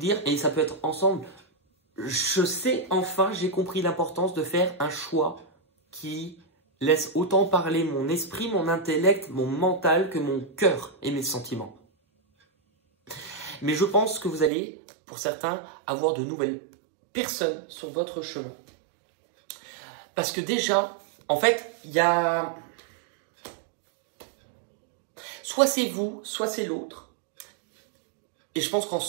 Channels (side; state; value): left; drops out; at 14.5 s